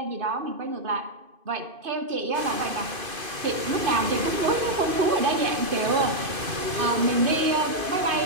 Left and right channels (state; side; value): late; left; 2.5 ms